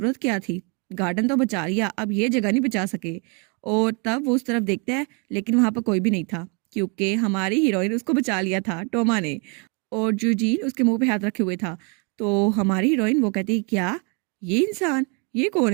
क्या थी, गार्डन तो बचा लिया, अब ये जगह नहीं बचा सके। और तब वो उस तरफ देखता है लेकिन वहाँ पर कोई भी नहीं था, क्योंकि हमारी हीरोइन उसको बचा लिया था टोमा ने, और जूजीन उसके मुंह पे हाथ रखे हुए था। तो हमारी हीरोइन वो कहती है क्या, ये इंसान, ये कौन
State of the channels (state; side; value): quieter; left; 34.4 dB